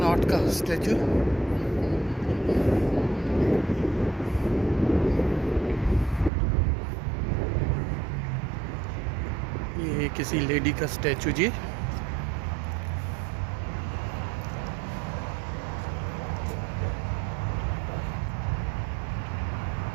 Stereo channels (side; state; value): left; drops out; at 6.3 s